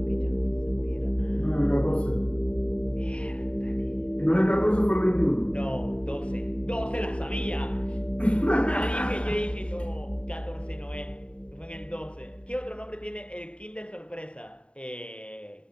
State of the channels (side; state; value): right; late; 0.058 ms